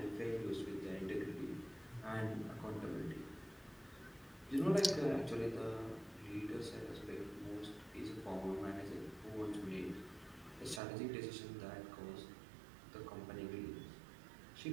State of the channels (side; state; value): left; drops out; at 10.8 s